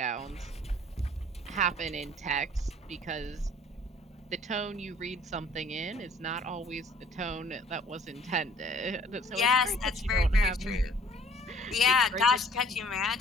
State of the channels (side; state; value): both; normal; correlation 0.54